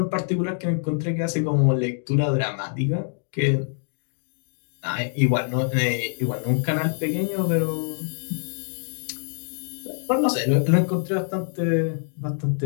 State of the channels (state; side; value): silent; right; digital silence